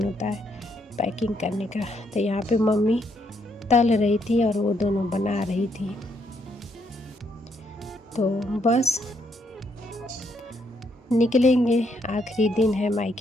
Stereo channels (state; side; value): normal; both; correlation 0.74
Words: होता है पैकिंग करने का। तो यहाँ पे मम्मी तल रही थी और वो दोनों बना रही थी। तो बस निकलेंगे, आखिरी दिन है